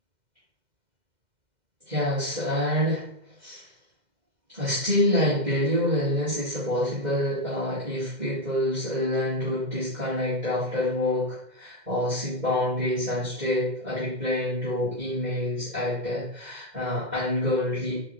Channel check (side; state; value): left; late; 2.1 ms